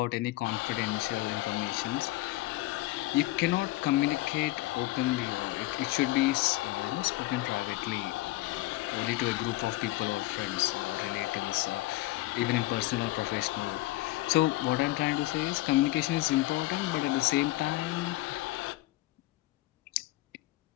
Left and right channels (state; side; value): quieter; right; 18.4 dB